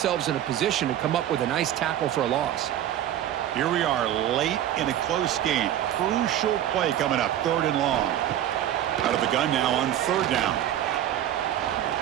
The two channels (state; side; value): quieter; left; 11.6 dB